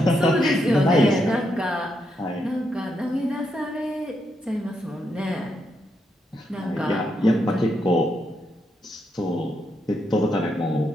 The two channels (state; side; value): normal; both; correlation 0.80